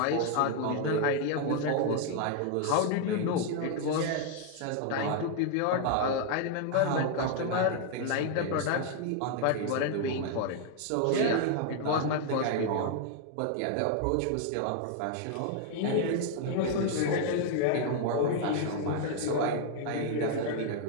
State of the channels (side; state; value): both; different; correlation 0.00